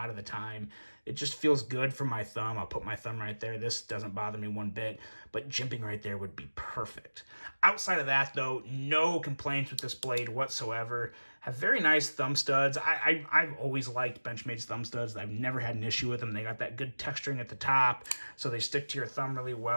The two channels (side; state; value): both; inverted; correlation -1.00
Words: of the time. It just feels good for my thumb. I'll put my thumb right there. This doesn't bother me one bit, but jimping right there would be perfect. Outside of that though, no complaints with this blade whatsoever. Have very nice thumb studs. I've always liked Benchmade's thumb studs. I've never had an issue with them. They got that good texturing at the top, so they stick to your thumb really